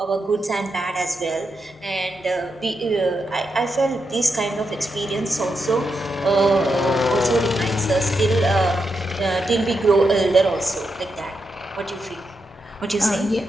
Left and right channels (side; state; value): both; normal; correlation 0.85